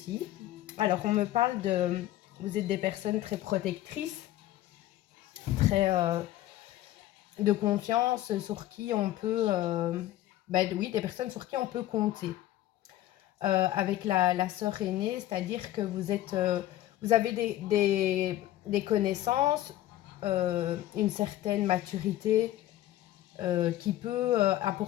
Alors, on me parle de... Vous êtes des personnes très protectrices, très de confiance, sur qui on peut... oui, des personnes sur qui on peut compter. Avec la sœur aînée, c'est-à-dire que vous avez des connaissances, une certaine maturité qui peut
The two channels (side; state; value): right; quieter; 14.5 dB